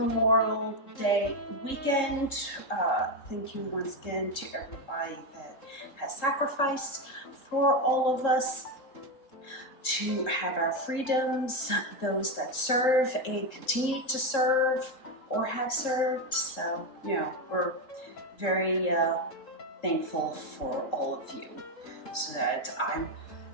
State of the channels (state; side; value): late; right; 3.7 ms